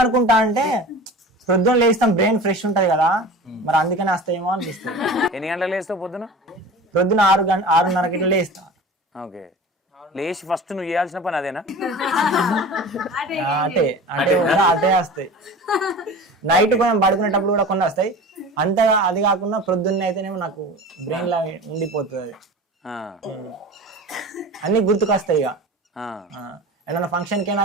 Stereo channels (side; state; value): both; normal; correlation 0.36